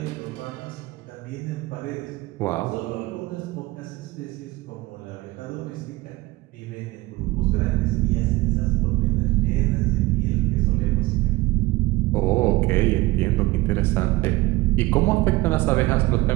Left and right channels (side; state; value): left; quieter; 20.1 dB